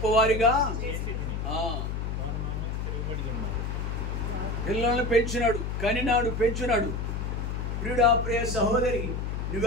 పిల్లల్ని పెంచినాడు, కనినాడు, పెంచినాడు. ప్రియుడా, ప్రియ సహోదరి,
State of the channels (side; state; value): left; noise; hum, 3 dB below the sound